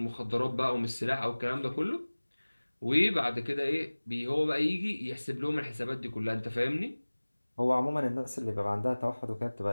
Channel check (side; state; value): both; inverted; correlation -1.00